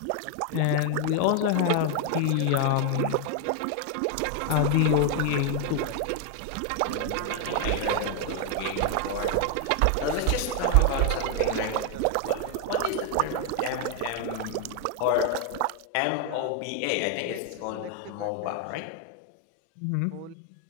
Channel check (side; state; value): both; different; correlation 0.01